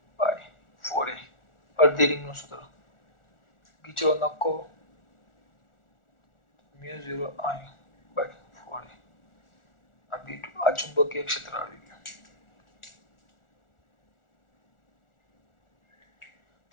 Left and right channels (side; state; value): right; late; 1.4 ms